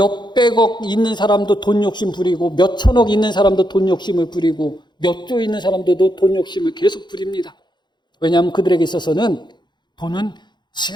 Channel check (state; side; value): late; right; 0.21 ms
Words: 있는 사람도 돈 욕심 부리고 몇천억 있는 사람도 돈 욕심을 부리고 몇 조 있는 사람들도 돈 욕심을 계속 부립니다. 왜냐하면 그들에게 있어서는 돈은